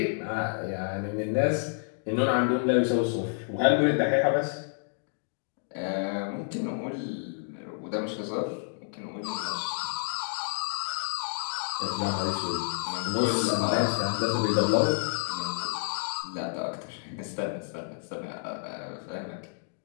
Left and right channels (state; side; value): silent; right; digital silence